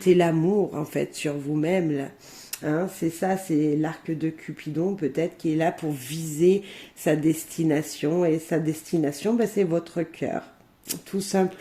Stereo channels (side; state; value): both; identical; correlation 1.00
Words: l'amour, en fait, sur vous-même, là. Hein, c'est ça, c'est l'arc de Cupidon peut-être qui est là pour viser sa destination. Et sa destination, ben, c'est votre cœur, tout